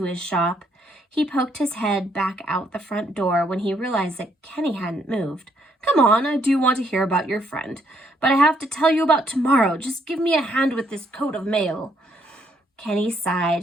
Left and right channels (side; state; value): both; normal; correlation 0.72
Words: his shop. He poked his head back out the front door when he realized that Kenny hadn't moved. Come on, I do want to hear about your friend, but I have to tell you about tomorrow. Just give me a hand with this coat of mail. Kenny